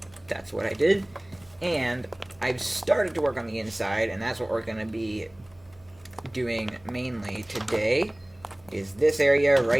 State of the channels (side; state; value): right; noise; hum, 29 dB below the sound